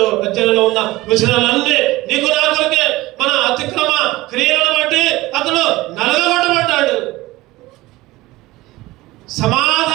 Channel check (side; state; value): left; quieter; 18.9 dB